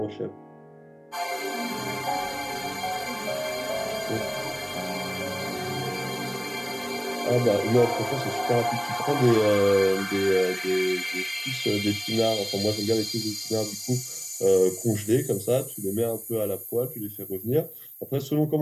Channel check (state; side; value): identical; both; correlation 1.00